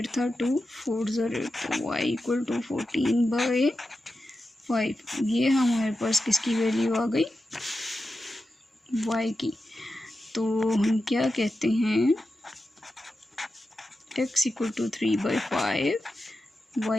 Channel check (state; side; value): normal; both; correlation 0.91